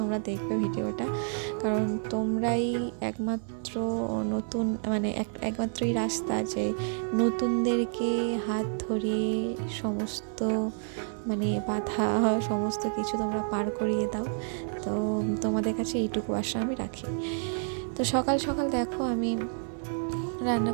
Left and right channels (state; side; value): silent; left; 58 dB below the other